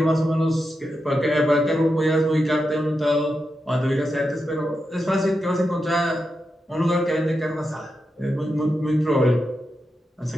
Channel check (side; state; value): both; normal; correlation 0.87